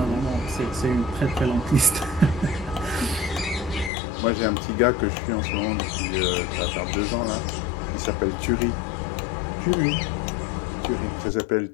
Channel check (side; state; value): right; drops out; at 3.9 s